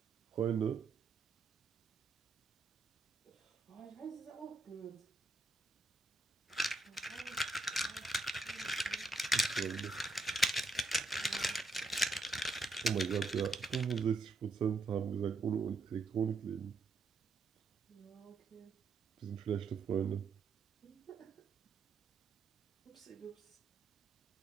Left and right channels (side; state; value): left; quieter; 3.2 dB